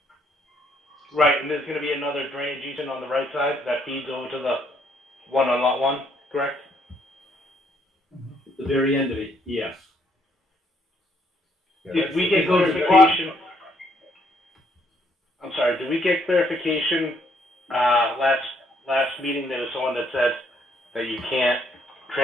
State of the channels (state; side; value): normal; both; correlation 0.69